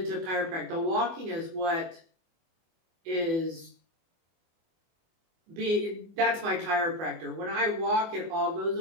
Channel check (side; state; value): left; late; 24 ms